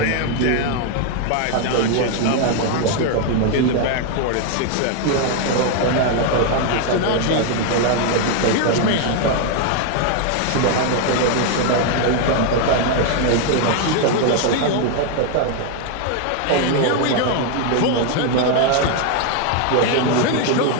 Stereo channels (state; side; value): different; both; correlation 0.01